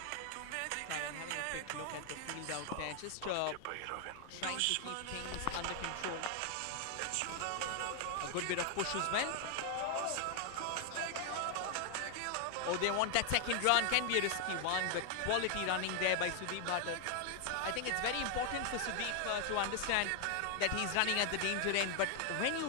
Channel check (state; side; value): different; both; correlation 0.00